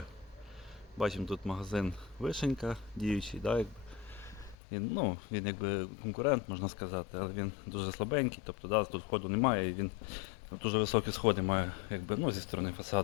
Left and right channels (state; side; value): drops out; right; at 4.5 s